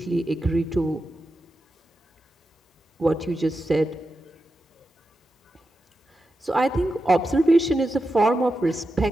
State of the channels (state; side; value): normal; both; correlation 0.90